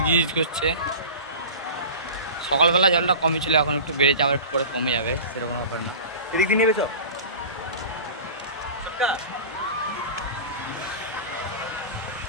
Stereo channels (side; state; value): both; inverted; correlation -0.34